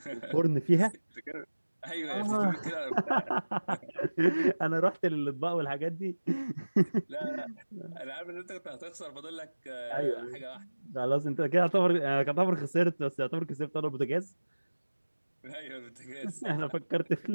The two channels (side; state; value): both; inverted; correlation -1.00